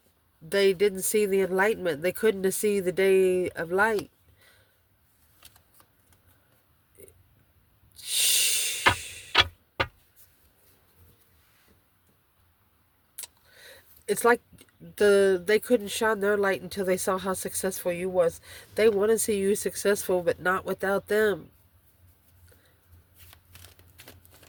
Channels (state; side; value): identical; both; correlation 1.00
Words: They didn't see the enlightenment. They couldn't see the day of light. Shh. It's like they couldn't shine their light until they saw how successful you was. They want to see you successful, but not without them.